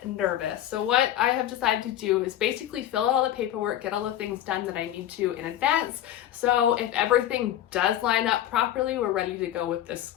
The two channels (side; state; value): right; quieter; 12.0 dB